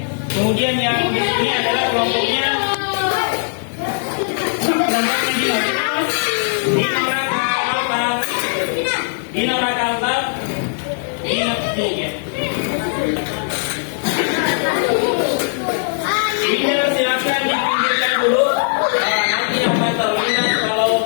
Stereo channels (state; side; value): silent; right; digital silence